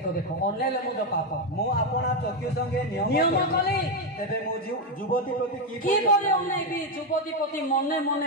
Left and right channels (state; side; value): normal; both; correlation 0.06